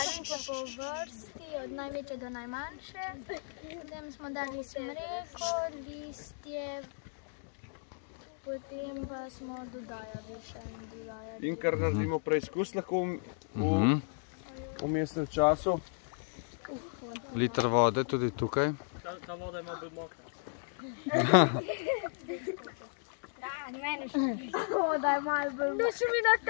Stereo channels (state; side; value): silent; right; digital silence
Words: po vrsti, od največje do najmanjše. Potem smo dali smreko, listje, potem pa smo dodajali še in dodajali. In kar naredimo preizkus lahko v vmesnem času. Liter vode tudi tukaj. Ta voda ima bolj mokra. Voda je malo bolj mokra. Noč mi